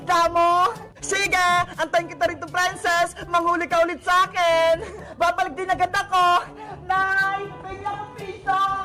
mo. Sige, antayin kita rito, princess. Manghuli ka ulit sa akin. Babalik din agad ako. Nay, bigyan ako piso.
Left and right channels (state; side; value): identical; both; correlation 1.00